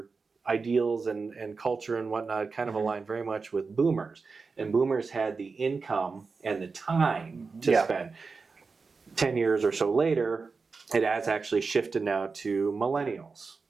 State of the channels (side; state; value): left; quieter; 4.6 dB